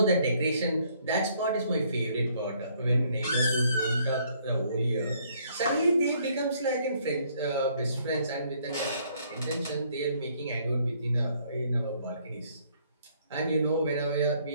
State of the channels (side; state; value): both; inverted; correlation -0.65